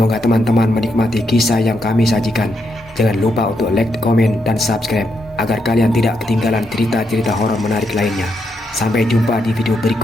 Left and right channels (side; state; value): both; normal; correlation 0.80